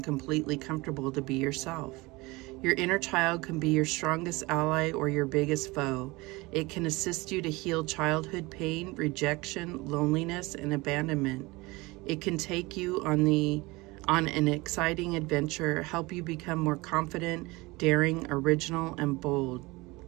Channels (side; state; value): left; quieter; 22.9 dB